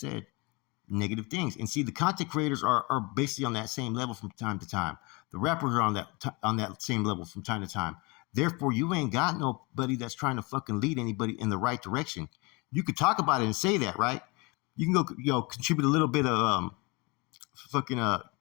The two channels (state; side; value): quieter; right; 27.4 dB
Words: negative things. And see, the content creators are basically on that same level from time to time. The rappers are on that same level from time to time. Therefore, you ain't got nobody that's trying to fucking lead anybody in the right direction. You could talk about it and say that, right? You can go, contribute a little bit of